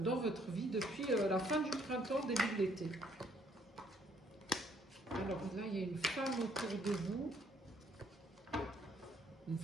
votre vie depuis la fin du printemps, début de l'été. Alors là, il y a une femme autour de vous, une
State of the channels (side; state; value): both; normal; correlation 0.66